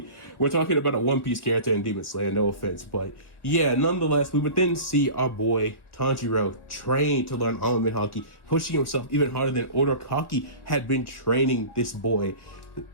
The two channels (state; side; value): late; right; 1.6 ms